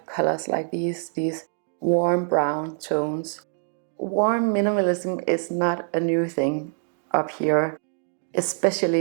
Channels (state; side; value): silent; left; 58 dB below the other